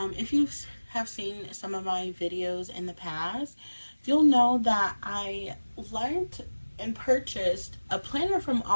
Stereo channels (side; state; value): both; inverted; correlation -1.00